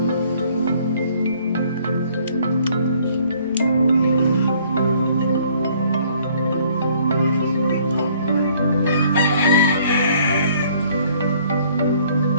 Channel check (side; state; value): both; inverted; correlation -0.60